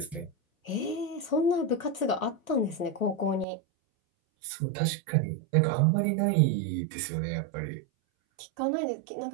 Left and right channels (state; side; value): drops out; left; at 3.5 s